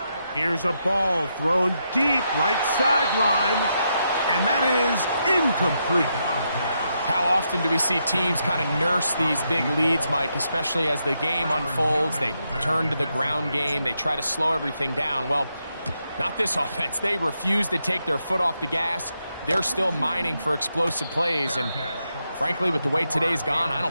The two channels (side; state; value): both; inverted; correlation -0.82